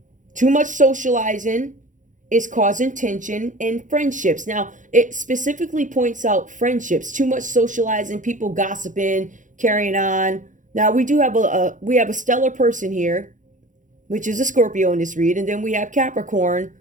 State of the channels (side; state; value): left; late; 0.37 ms